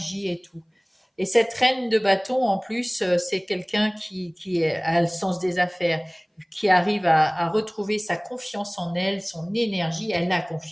et tout. Et cette reine de bâton, en plus, c'est quelqu'un a le sens des affaires, qui arrive à retrouver sa confiance en elle, son énergie. Elle a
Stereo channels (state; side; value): identical; both; correlation 1.00